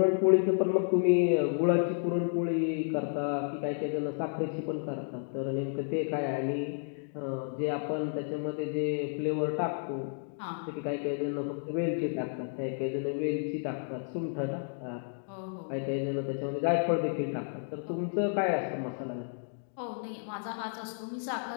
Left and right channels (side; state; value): right; silent; digital silence